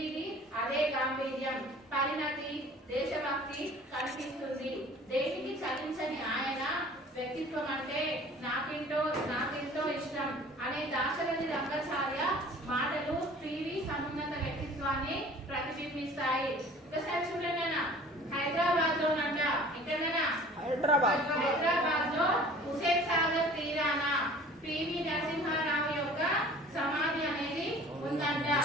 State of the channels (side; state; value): both; normal; correlation 0.47